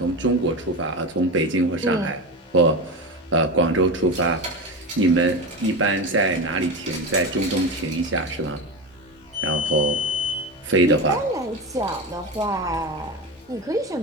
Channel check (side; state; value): both; normal; correlation 0.22